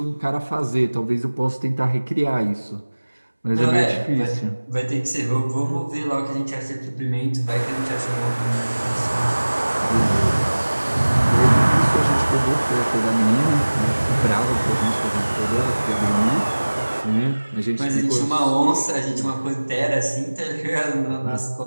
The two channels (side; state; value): both; inverted; correlation -1.00